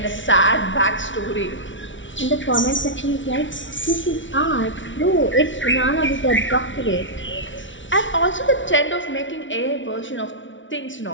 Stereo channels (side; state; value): right; late; 0.56 ms